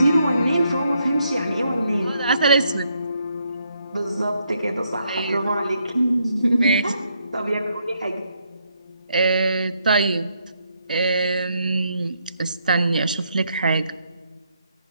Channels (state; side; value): inverted; both; correlation -0.75